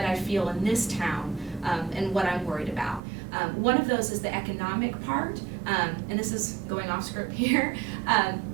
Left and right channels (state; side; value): drops out; left; at 3.0 s